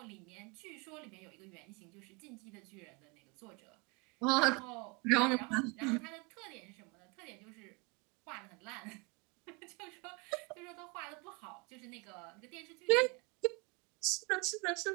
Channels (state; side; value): quieter; left; 28.8 dB